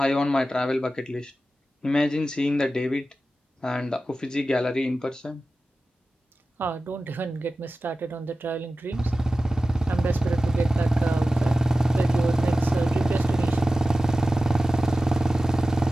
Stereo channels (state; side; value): normal; both; correlation 0.95